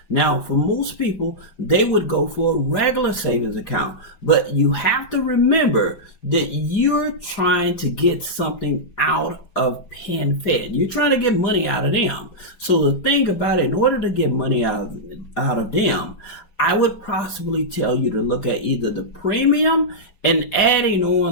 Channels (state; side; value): late; right; 5.0 ms